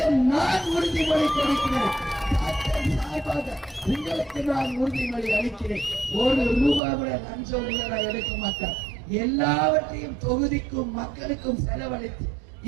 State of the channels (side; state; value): left; drops out; at 6.8 s